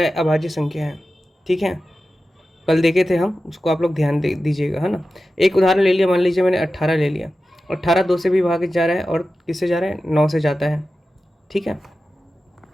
अभाज्य संख्या है। ठीक है, कल देखे थे हम, उसको आप लोग ध्यान दीजिएगा, है ना। एक उदाहरण ले लिया, मान लीजिए मैंने 18 ले लिया, 18 2 से भी भागित जा रहा है और किससे जा रहा है, 9 से जाता है। ठीक है,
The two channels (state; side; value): normal; both; correlation 0.93